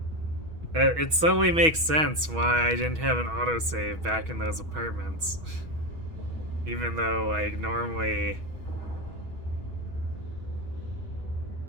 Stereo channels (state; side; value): late; left; 6.2 ms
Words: It suddenly makes sense why I didn't have an autosave back in those apartments. Even though, like, normally